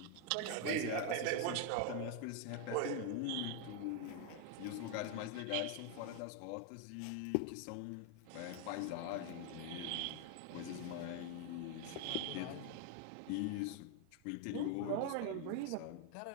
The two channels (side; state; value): both; different; correlation 0.01